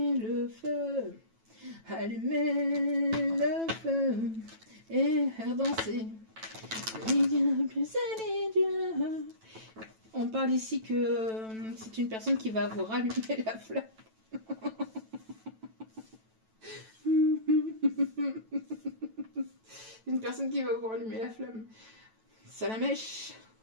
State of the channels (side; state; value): left; late; 9.1 ms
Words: le feu. Allumez le feu. Et faire danser. On parle ici que c'est une personne qui va vous rallumer la flamme. Une personne qui va vous rallumer la flamme. Salamèche.